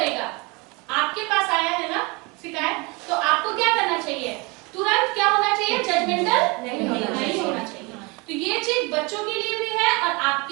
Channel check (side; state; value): left; quieter; 27.5 dB